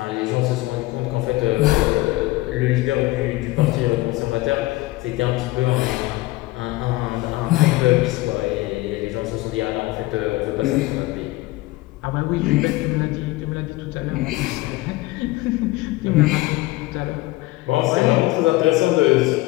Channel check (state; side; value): quieter; right; 19.6 dB